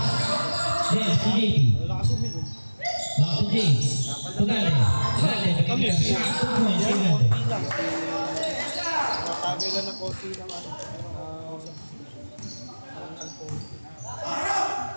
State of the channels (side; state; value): both; inverted; correlation -1.00